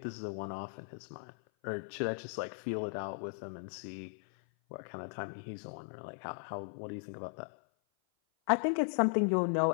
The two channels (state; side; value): silent; right; 53 dB below the other